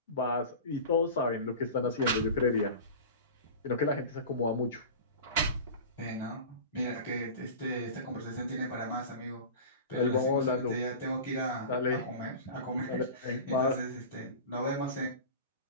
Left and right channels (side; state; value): both; inverted; correlation -0.32